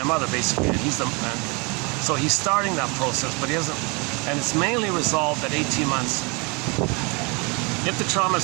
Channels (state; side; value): quieter; left; 30.3 dB